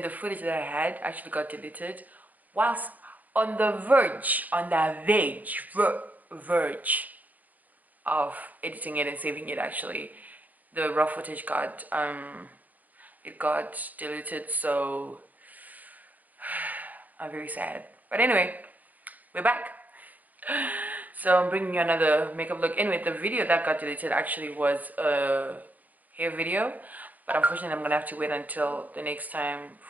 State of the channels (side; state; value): left; late; 0.079 ms